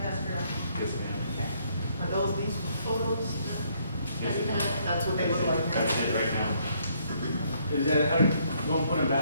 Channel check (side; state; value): both; inverted; correlation -0.69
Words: Yes, ma'am. Are those these photos? Yes, ma'am. That's what they look like. That's it right now. Is that how you want to put them